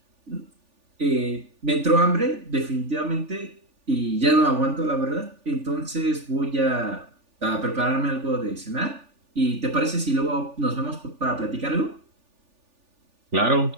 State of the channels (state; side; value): late; left; 3.4 ms